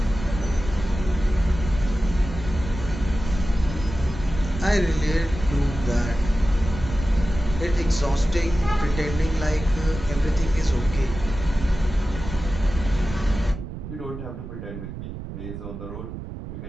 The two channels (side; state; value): right; noise; rumble, 9 dB below the sound